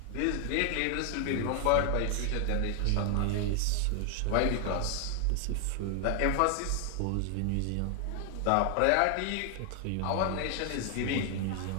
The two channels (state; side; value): different; both; correlation 0.00